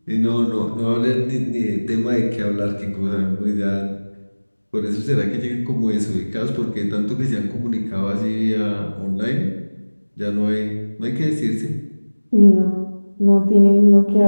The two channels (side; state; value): both; inverted; correlation -1.00